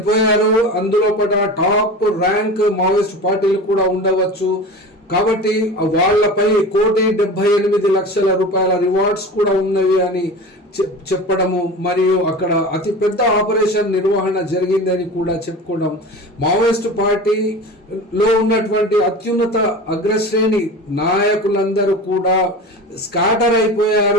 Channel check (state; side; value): normal; both; correlation 0.33